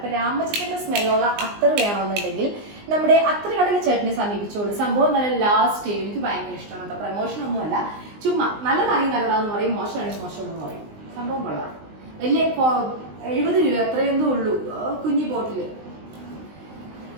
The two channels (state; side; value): late; left; 19 ms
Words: രാമച്ചത്തിന്റെ സ്മെല്ലുള്ള അത്തർ വേണമെന്നുണ്ടെങ്കിൽ നമ്മുടെ അത്ര കടയിൽ ചേട്ടനെ സമീപിച്ചോളൂ. സംഭവം നല്ല ലാസ്റ്റ് എനിക്ക് ഭയങ്കര ഇഷ്ടമാണ് കേട്ടോ. പ്രമോഷൻ ഒന്നുമല്ല, ചുമ്മാ നല്ലതാണെങ്കിൽ നല്ലതാന്ന് പറയും, മോശമാണെങ്കിൽ മോശമെന്ന് പറയും. സംഭവം കൊള്ളാം. വലിയ 70 രൂപ എത്രയെന്തോ ഉള്ളൂ, കുഞ്ഞി ബോട്ടില്.